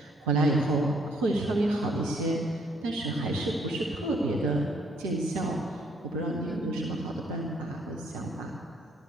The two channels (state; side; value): normal; both; correlation 0.66